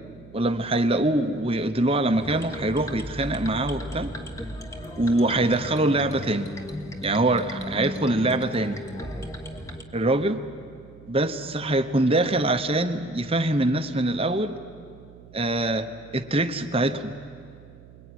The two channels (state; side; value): noise; right; hum, 22 dB below the sound